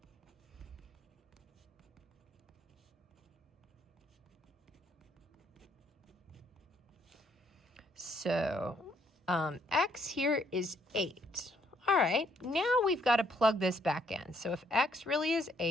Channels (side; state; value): both; normal; correlation 0.69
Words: So x here is 8. All right, now we've got to plug this back in. So if x really is